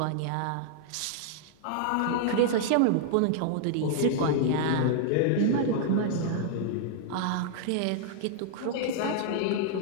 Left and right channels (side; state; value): both; different; correlation -0.01